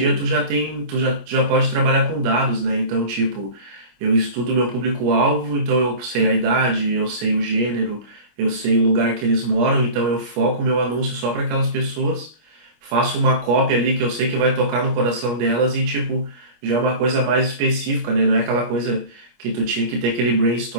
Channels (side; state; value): left; late; 25 ms